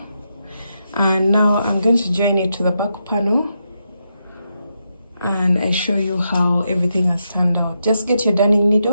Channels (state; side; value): inverted; both; correlation -0.83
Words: and now I'm going to join it to the back panel, and I show you how everything has turned out. Just get your darning